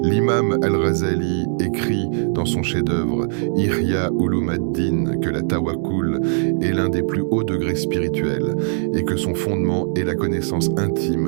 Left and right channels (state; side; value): silent; left; 65 dB below the other